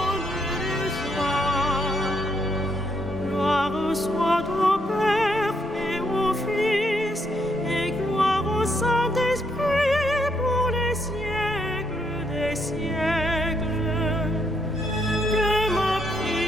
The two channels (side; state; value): both; normal; correlation 0.75